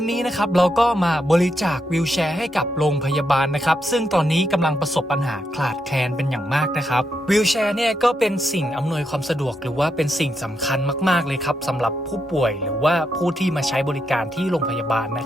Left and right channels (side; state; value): both; normal; correlation 0.82